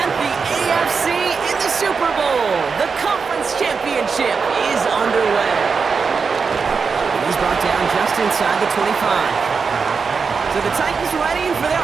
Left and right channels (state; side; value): quieter; left; 5.3 dB